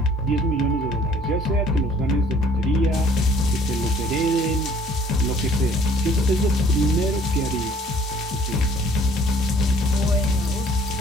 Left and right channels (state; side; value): normal; both; correlation 0.56